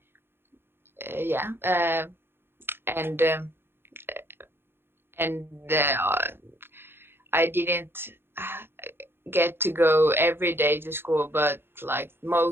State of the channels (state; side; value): late; left; 0.11 ms